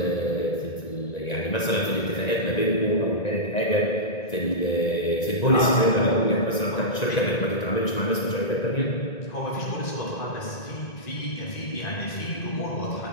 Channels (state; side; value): late; right; 1.9 ms